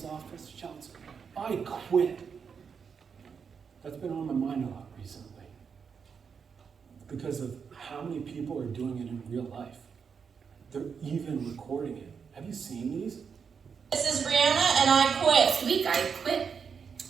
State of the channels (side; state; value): left; quieter; 6.4 dB